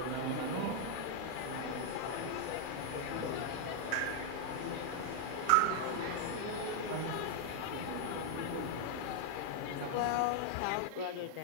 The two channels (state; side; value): different; both; correlation 0.00